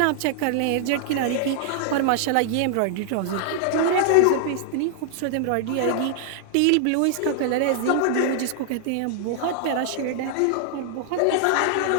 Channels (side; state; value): both; different; correlation -0.01